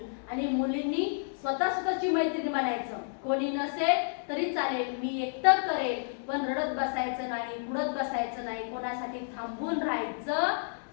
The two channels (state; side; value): silent; right; digital silence